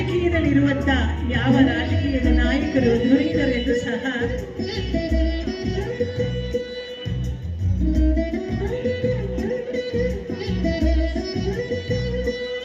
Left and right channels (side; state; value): both; identical; correlation 1.00